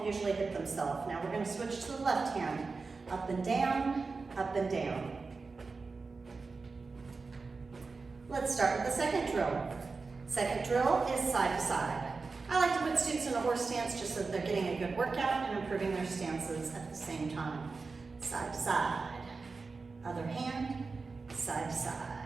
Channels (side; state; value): left; quieter; 4.2 dB